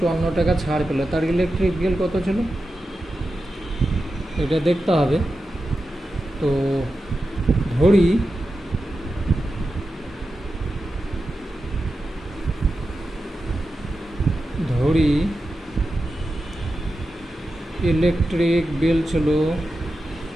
টাকা ছাড় পেল, তার ইলেকট্রিক বিল কত ছিল, এটা দেখতে হবে। তো ধরি ইলেকট্রিক বিল ছিল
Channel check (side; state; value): both; normal; correlation 0.91